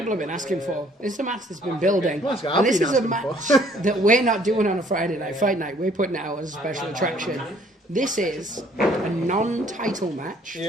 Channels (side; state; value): both; normal; correlation 0.60